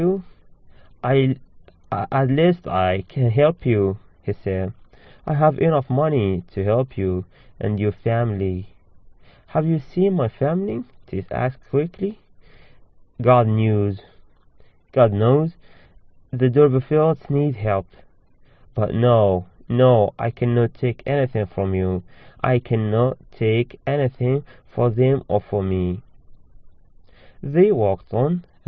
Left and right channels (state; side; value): identical; both; correlation 1.00